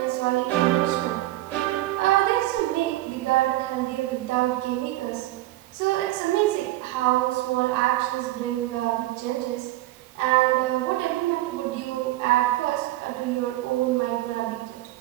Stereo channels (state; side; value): quieter; left; 17.0 dB